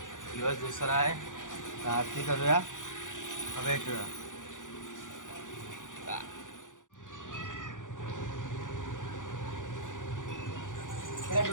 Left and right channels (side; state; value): right; late; 0.87 ms